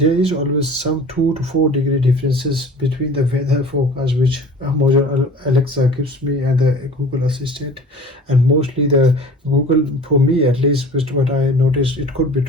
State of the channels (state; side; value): normal; both; correlation 0.43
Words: is always some 2 to 4 degree differences between the weather forecast which Alexa gives me and the Google Assistant, and mostly the Google, for me at least, with what I noticed, it could be